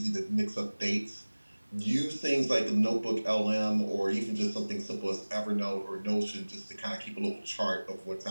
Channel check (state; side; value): inverted; both; correlation -1.00